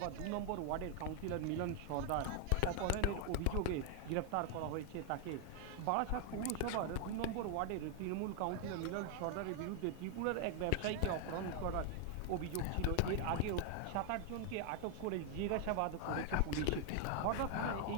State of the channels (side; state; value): both; different; correlation 0.00